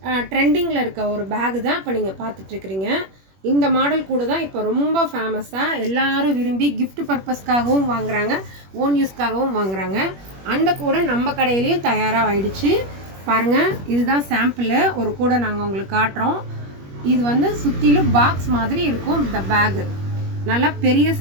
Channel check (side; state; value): left; late; 21 ms